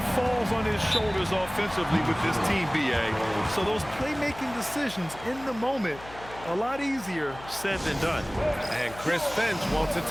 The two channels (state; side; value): noise; left; hum, 17 dB below the sound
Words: falls on his shoulders offensively with this team, B.A. So those playmaking decisions in the moment, a lot easier said than done. And Chris Finch wants a